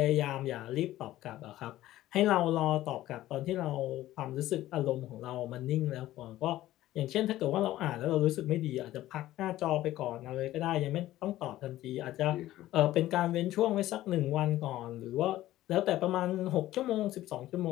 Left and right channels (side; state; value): right; quieter; 14.9 dB